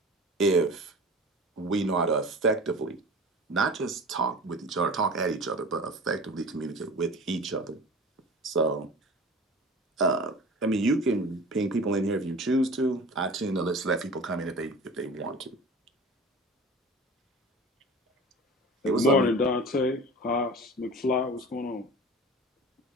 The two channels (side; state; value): both; normal; correlation 0.38